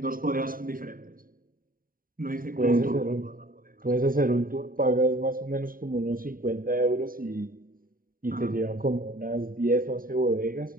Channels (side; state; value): left; late; 0.41 ms